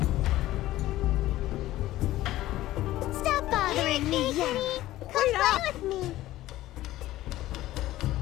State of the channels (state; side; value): quieter; right; 15.5 dB